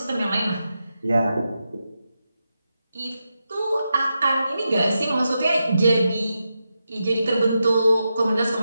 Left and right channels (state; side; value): inverted; both; correlation -0.88